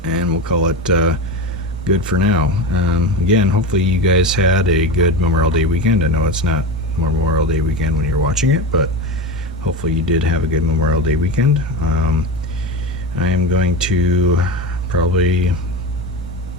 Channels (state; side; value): normal; both; correlation 0.22